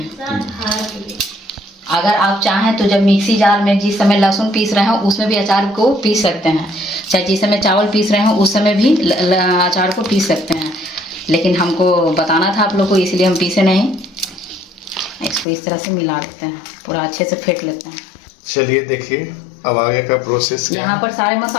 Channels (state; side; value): drops out; right; at 15.5 s